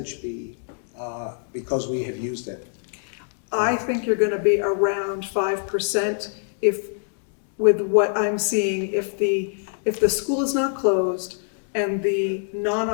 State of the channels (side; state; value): right; silent; digital silence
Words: be because we have used it? I think you're going to be around 5% with what I'm seeing, if the school is not closed and the